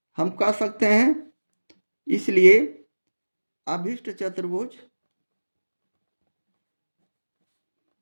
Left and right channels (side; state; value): both; inverted; correlation -1.00